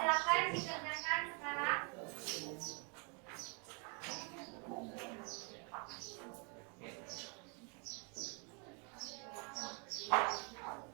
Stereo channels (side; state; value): left; quieter; 35.4 dB